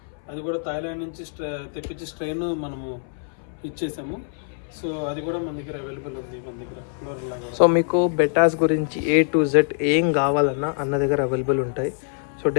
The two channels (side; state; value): right; silent; 62 dB below the other